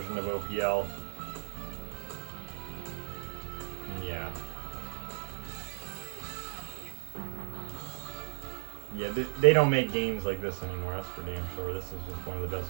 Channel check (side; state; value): left; silent; digital silence